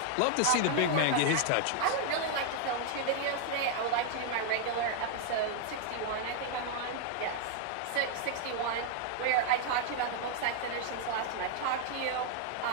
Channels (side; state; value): both; different; correlation 0.00